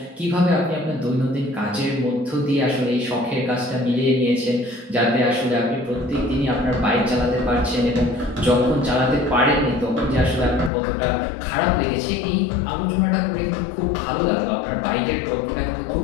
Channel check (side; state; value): right; drops out; at 10.7 s